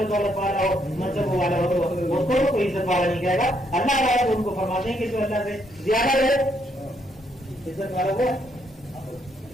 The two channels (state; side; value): normal; both; correlation 0.73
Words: دولت والا ہو، منصب والا ہو تو اس کو کوئی عزت والا نہیں کہے گا. اللہ تعالیٰ تو ان کو فرماتے ہیں کہ جو اللہ سے زیادہ رہے عزت والا ہو.